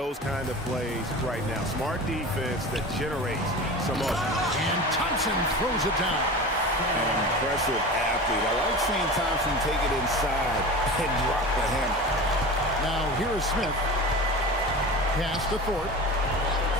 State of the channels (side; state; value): both; normal; correlation 0.32